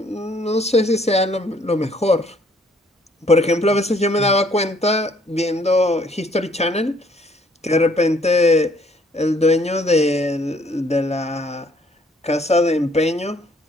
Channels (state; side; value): normal; both; correlation 0.63